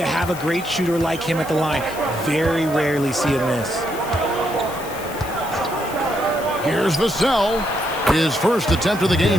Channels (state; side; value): noise; left; hiss, 15 dB below the sound